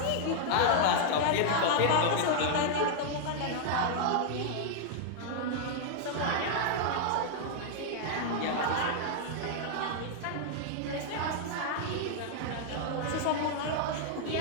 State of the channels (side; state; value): both; different; correlation 0.00